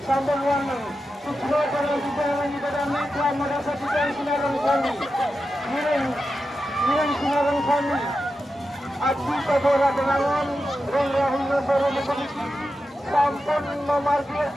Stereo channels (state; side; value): normal; both; correlation 0.90